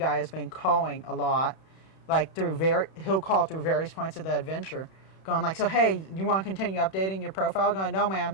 has been calling a lot, like he'll call through various points of the adventure, going like, so hey, you want to continue updating your profile? Going, no man,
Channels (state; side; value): late; right; 31 ms